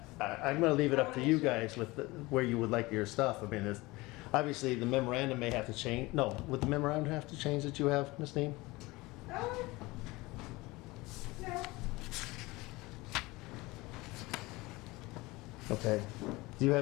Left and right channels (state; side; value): quieter; right; 21.8 dB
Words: going to leave it up to you guys with where you would like your stuff. I mean, obviously the memorandum may have to change. No, would the memorandum have to change that you have, Ms. Dean? No. Okay. Do you